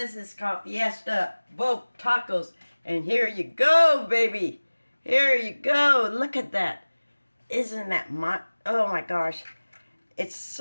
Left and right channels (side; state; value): both; inverted; correlation -1.00